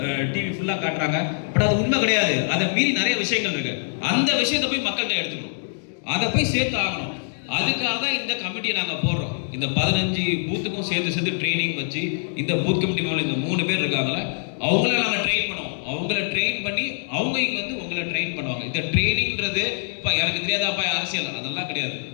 டிவி ஃபுல்லாக காட்டுறாங்க. பட் அது உண்மை கிடையாது. அதை மீறி நிறைய விஷயங்கள் இருக்கு. அந்த விஷயத்தை போய் மக்கள்கிட்ட எடுத்துக்கணும், அதை போய் சேர்த்து ஆகணும். அதுக்காக தான் இந்த கமிட்டியை நாங்கள் போடுறோம். இந்த 15 பூத்துக்கும் சேர்த்து ட்ரைனிங் வச்சு இந்த பூத் கமிட்டி மேலே இந்த 3 பேர் இருக்காங்களே அவங்கள நாங்கள் ட்ரெயின் பண்ணுவோம். அவங்கள ட்ரெயின் பண்ணி அவங்க இங்கே வந்து உங்களை ட்ரெயின் பண்ணுவாங்க. இந்த ட்ரைனிங்கிறது இப்போ எனக்கு தெரியாதாப்பா அரசியல் அதெல்லாம் கிடையாது.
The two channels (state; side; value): silent; right; digital silence